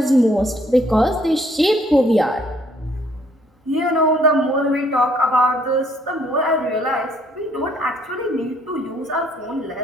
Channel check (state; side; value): normal; both; correlation 0.64